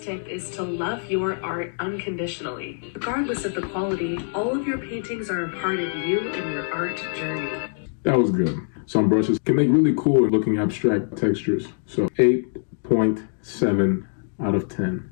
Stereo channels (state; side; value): silent; right; digital silence